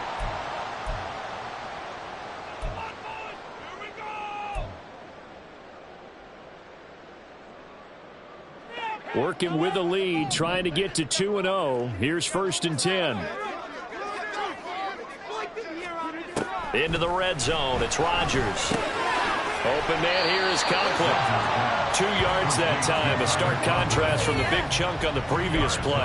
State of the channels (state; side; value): identical; both; correlation 1.00